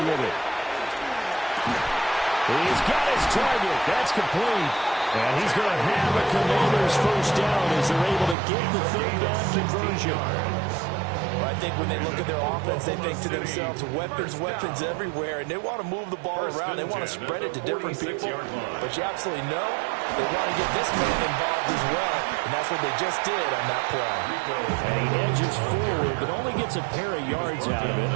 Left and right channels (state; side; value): drops out; left; at 8.3 s